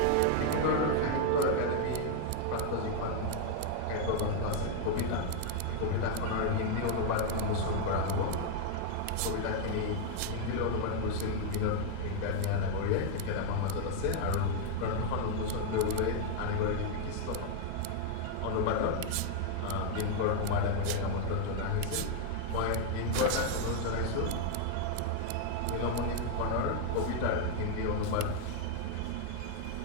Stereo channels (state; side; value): different; both; correlation 0.00